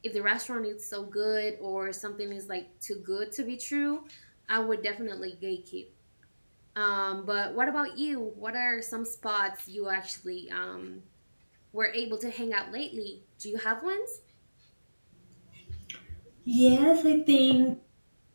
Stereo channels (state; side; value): inverted; both; correlation -1.00